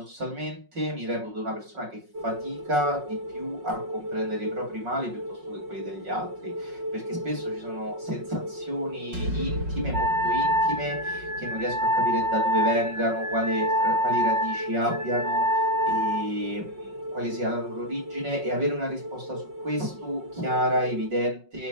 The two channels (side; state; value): left; late; 5.4 ms